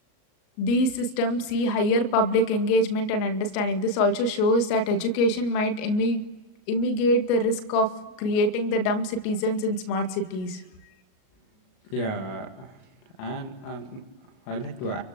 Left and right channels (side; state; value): right; late; 38 ms